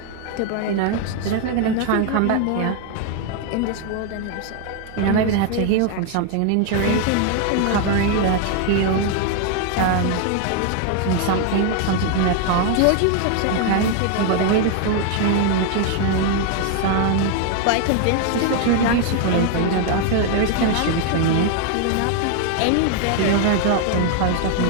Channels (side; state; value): both; different; correlation 0.00